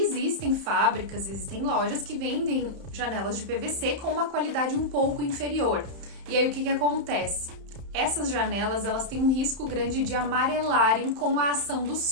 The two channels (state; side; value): late; left; 31 ms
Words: fábricas, existem lojas que vendem janelas de PVC com uma qualidade um pouco inferior. E aí o que acontece? Essas janelas, elas têm um risco grande de amarelarem com a ação do